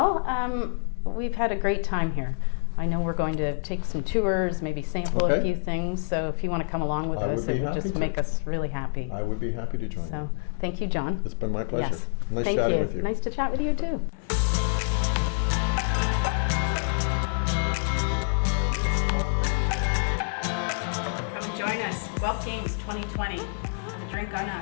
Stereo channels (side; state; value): right; silent; digital silence